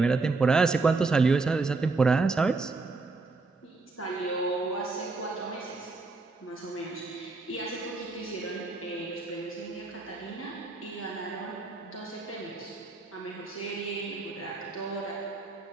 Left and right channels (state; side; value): quieter; left; 3.8 dB